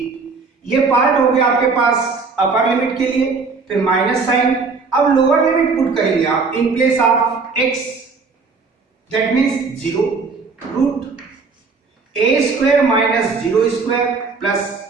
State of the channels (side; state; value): left; quieter; 4.5 dB